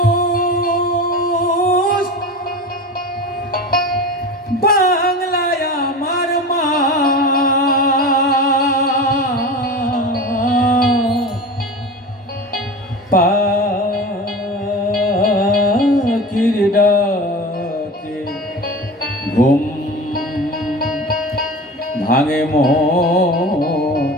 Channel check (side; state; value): both; normal; correlation 0.32